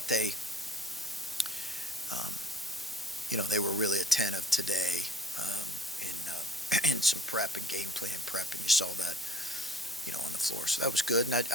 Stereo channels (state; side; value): normal; both; correlation 0.52